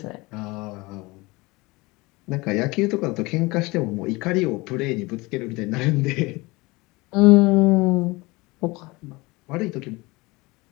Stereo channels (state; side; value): quieter; right; 23.3 dB